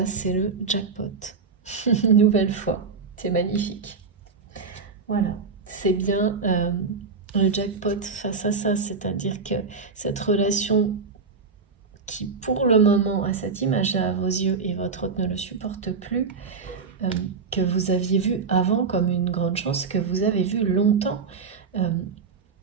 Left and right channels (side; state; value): left; quieter; 5.0 dB